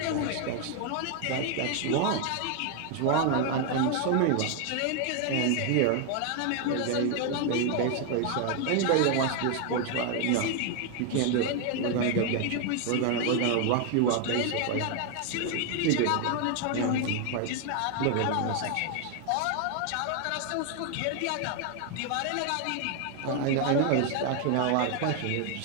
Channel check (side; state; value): both; different; correlation 0.01